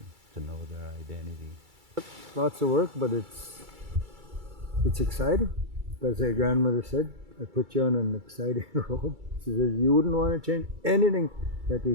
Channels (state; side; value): late; left; 2.3 ms